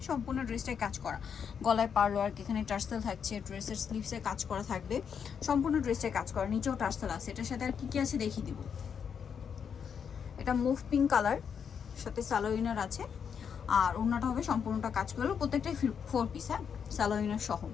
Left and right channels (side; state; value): right; quieter; 7.2 dB